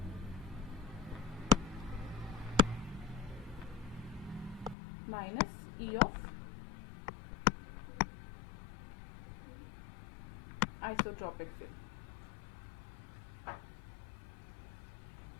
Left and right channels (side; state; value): right; drops out; at 4.8 s